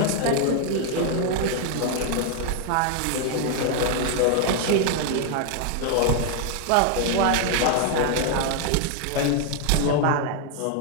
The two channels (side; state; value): both; different; correlation 0.00